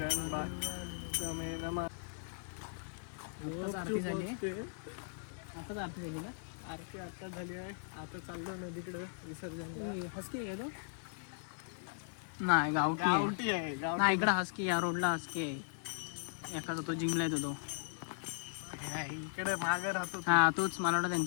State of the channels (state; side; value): silent; right; 53 dB below the other